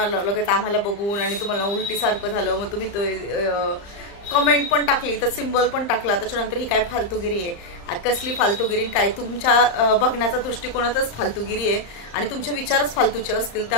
लगेच आम्हाला बघून आणि तुम्हाला उलटी सारखं झालं, मग तुम्ही कमेंट पण टाकली, तर सिम्बॉल पण टाकला, त्याच्यानंतर ही काय फालतूगिरी आहे? कसली फालतूगिरी? काय तुमच्या बघण्याचा दृष्टिकोनातच फालतूगिरी आहे आणि तुमचे विचारच फालतूचे असतील,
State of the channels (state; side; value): late; right; 35 ms